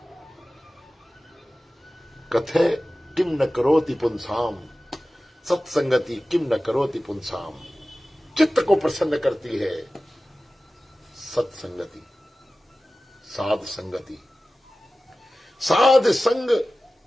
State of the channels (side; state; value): both; normal; correlation 0.96